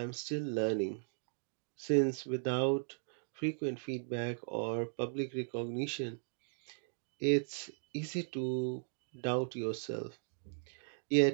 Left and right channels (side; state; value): left; silent; digital silence